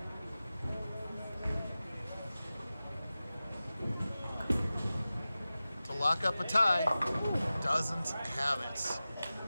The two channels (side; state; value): both; inverted; correlation -0.96